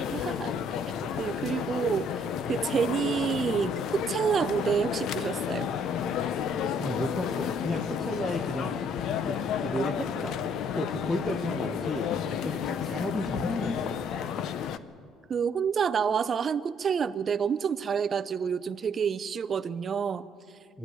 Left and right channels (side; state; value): both; normal; correlation 0.64